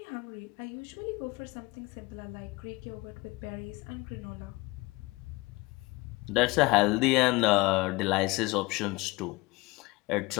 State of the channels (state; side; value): quieter; right; 22.8 dB